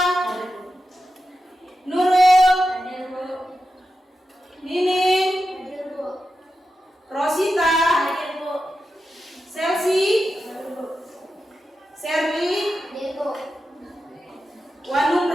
Hadir, Bu. Nurul, Hadir, Bu. Nining, Hadir, Bu. Rosita, Hadir, Bu. Selsi, Hadir, Bu. Serli, Hadir, Bu.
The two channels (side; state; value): both; normal; correlation 0.90